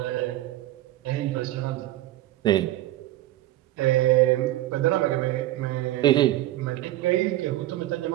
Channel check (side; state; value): left; quieter; 15.4 dB